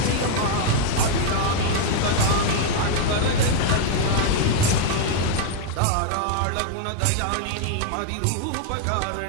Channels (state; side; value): different; both; correlation 0.00